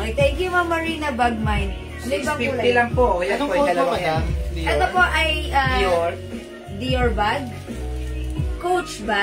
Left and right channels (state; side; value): identical; both; correlation 1.00